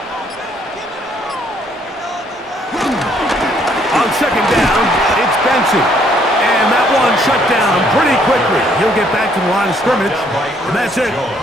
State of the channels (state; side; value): normal; both; correlation 0.66